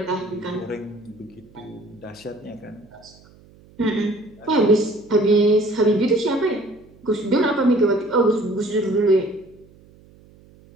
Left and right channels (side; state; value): right; noise; hum, 26 dB below the sound